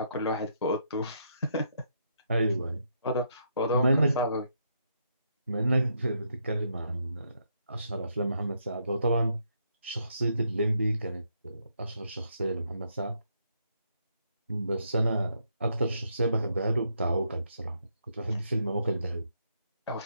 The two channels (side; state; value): both; inverted; correlation -0.76